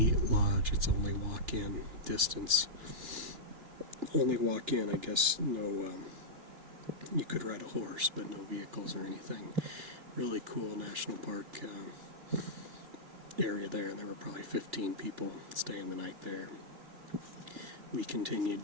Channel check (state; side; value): late; left; 3.3 ms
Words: lodge. It's only walk-in distance. Only walk-in, I guess. No, you could ride a horse, but no vehicles or anything. Really cool national park area there, and there were probably 15 people staying the night there. We continued